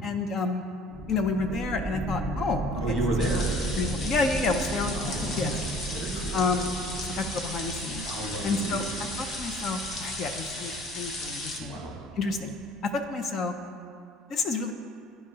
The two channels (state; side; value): normal; both; correlation 0.53